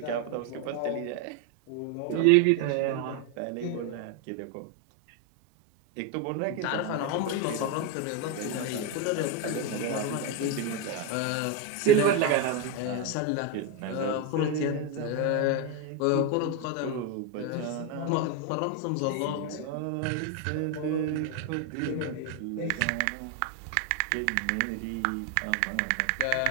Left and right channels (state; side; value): different; both; correlation 0.02